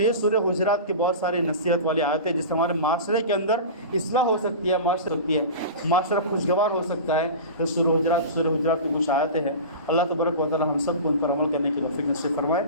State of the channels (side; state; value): both; inverted; correlation -0.31